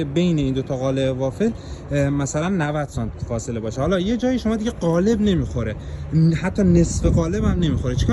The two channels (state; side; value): identical; both; correlation 1.00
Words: بین این دو تا قالب وافل مثلا 90 سانت فاصله باشه. حالا یه جایی شما دیگه قالب نمیخوره، حتی نصف قالب هم نمیخوره،